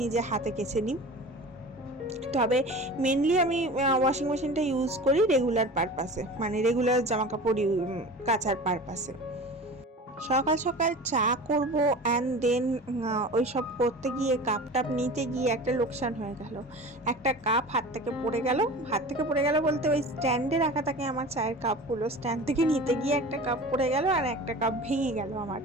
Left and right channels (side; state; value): both; normal; correlation 0.36